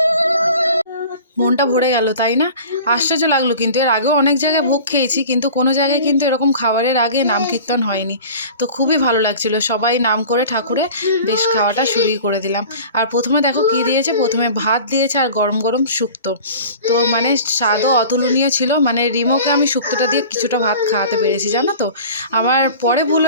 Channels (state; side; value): inverted; both; correlation -0.41